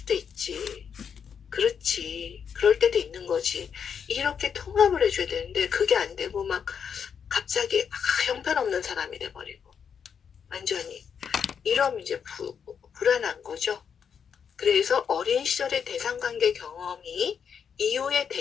있지. 그렇지. 그럴 때도 있는 거지. 이렇게 통합을 해줘야 되는데 그게 안 되고 막 갑자기 형편없는 사람이 돼버리고 완전히 이러면 이제 불안한 거죠. 그래서 어린 시절의 대상관계 경험이 이후의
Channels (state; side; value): quieter; right; 7.1 dB